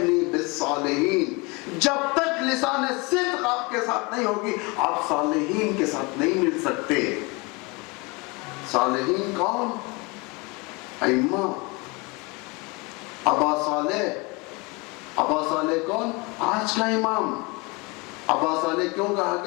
بِالصَّالِحِينَ. جب تک لسان صدق آپ کے ساتھ نہیں ہوگی آپ صالحین کے ساتھ نہیں مل سکتے. صالحین کون؟ ائمہ. ابا صالح. ابا صالح کون؟ آج کا امام. ابا صالح کیوں کہا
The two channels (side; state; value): right; quieter; 27.3 dB